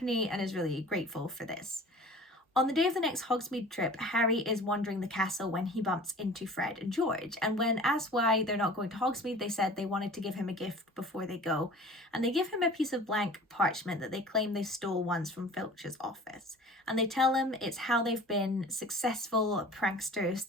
and is really grateful for this. On the day of the next Hogsmeade trip, Harry is wandering the castle when he bumps into Fred and George. And when asked why they're not going to Hogsmeade, they said they wanted to give him a gift before they go. And they give him a piece of blank parchment that they claim they stole once from Filch's office. And they tell him it's how they've been successful pranksters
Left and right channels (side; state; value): both; normal; correlation 0.43